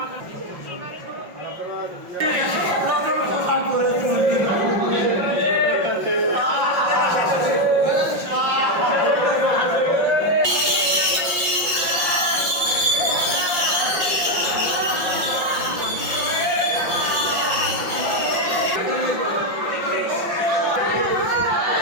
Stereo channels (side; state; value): left; late; 5.6 ms